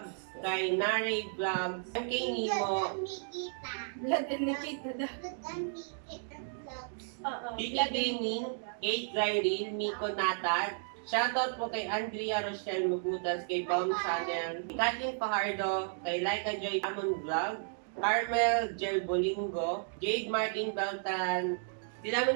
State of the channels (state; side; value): silent; left; digital silence